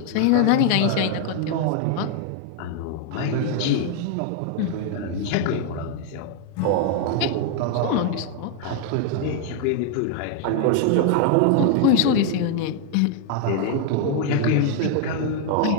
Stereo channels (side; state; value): both; different; correlation 0.00